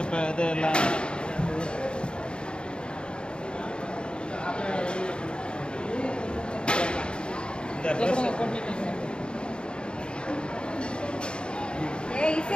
இப்போ இது எல்லாம் இந்த ட்ரெஸ்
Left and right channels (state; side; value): late; right; 0.053 ms